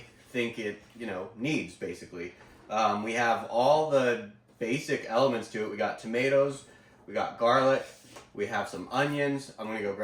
think it, needs basically. We have all the basic elements to it. We got tomatoes, we got garlic, we have some onions. I'm gonna go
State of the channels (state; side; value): identical; both; correlation 1.00